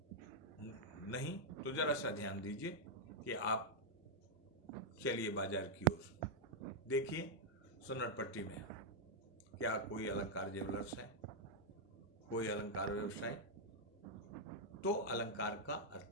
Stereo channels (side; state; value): both; normal; correlation -0.03